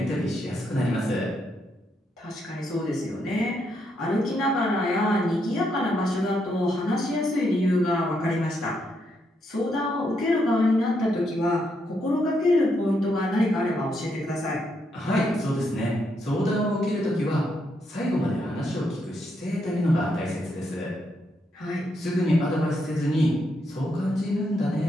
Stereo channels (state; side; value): normal; both; correlation 0.78